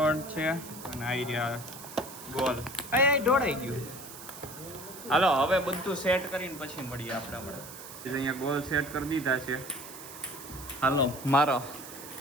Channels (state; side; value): noise; right; hiss, 14 dB below the sound